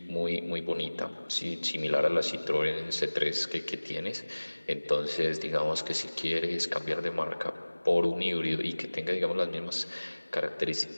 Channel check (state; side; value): inverted; both; correlation -1.00